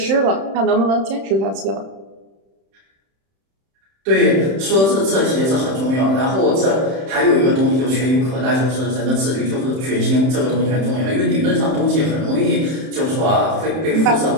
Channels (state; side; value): late; left; 31 ms